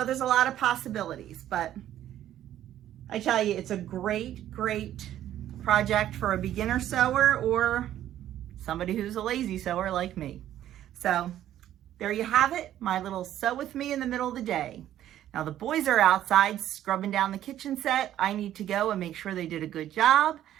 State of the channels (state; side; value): quieter; left; 12.0 dB